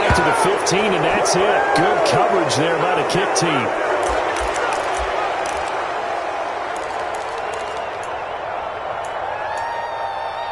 to the 15, and that's it. Good coverage there by the kick team.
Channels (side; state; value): both; identical; correlation 1.00